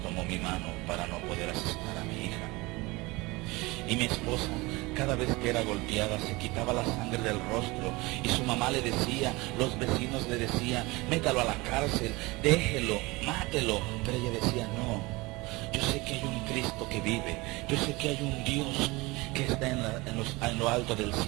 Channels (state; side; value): quieter; left; 23.1 dB